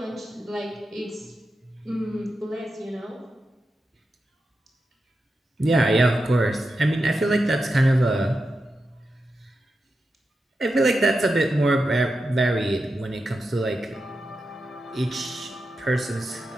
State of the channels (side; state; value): both; normal; correlation 0.89